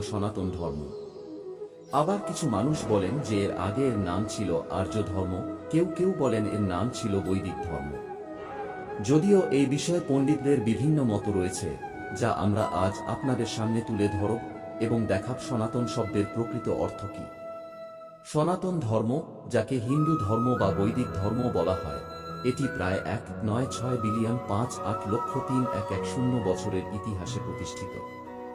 সনাতন ধর্ম। আবার কিছু মানুষ বলেন যে এর আগে এর নাম ছিল আর্য ধর্ম, কেউ কেউ বলেন এর নাম ছিল বৈদিক ধর্ম। যদিও এই বিষয়ে পণ্ডিতদের বিভিন্ন মত রয়েছে, যা আমরা আজ আপনাদের সামনে তুলে ধরব এবং দেখাব সনাতন শব্দের প্রকৃত অর্থ কী। সনাতন ধর্ম, যাকে হিন্দু ধর্ম বা বৈদিক ধর্ম বলা হয়, এটি প্রায় 196,5,8,3,110 বছরের ইতিহাসে প্রতিষ্ঠিত।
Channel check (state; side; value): identical; both; correlation 1.00